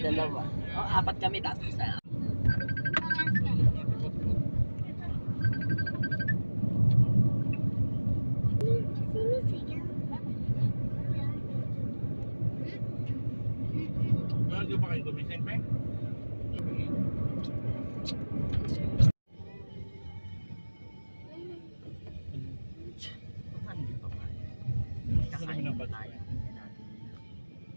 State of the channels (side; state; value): both; inverted; correlation -1.00